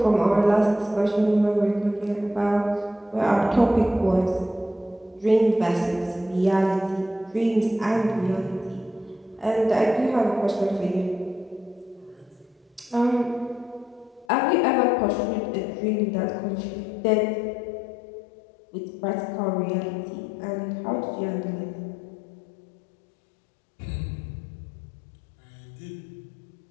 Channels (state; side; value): drops out; right; at 14.2 s